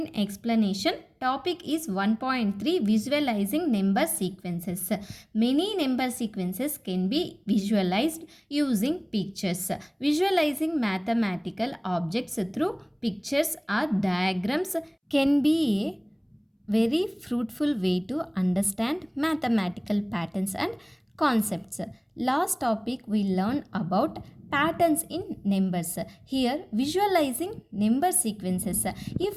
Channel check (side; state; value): both; identical; correlation 1.00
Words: explanation. Topic is 1.3 visualizing number sequences. Many number sequences can be visualized using pictures. Visualizing mathematical objects through pictures or diagrams can be a very fruitful way to understand mathematical patterns and concepts. Last topic we learned about patterns in numbers. Here visualizing number sequences.